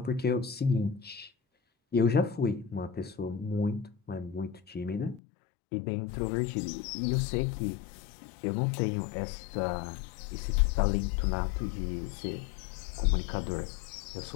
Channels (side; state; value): right; drops out; at 5.2 s